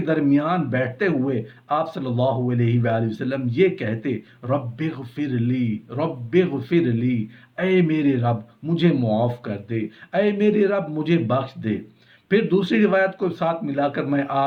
बैठते हुए आप सल्लल्लाहु अलैहि वसल्लम ये कहते, रब्बिग़फ़िरली रब्बिग़फ़िरली, ऐ मेरे रब मुझे मुआफ़ कर दे, ऐ मेरे रब मुझे बख्श दे। फिर दूसरी रिवायत को साथ मिलाकर मैं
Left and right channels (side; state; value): both; identical; correlation 1.00